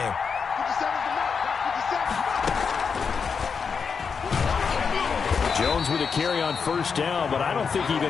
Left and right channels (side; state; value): right; quieter; 5.9 dB